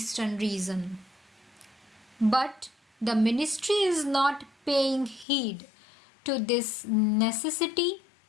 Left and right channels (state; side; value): drops out; right; at 5.2 s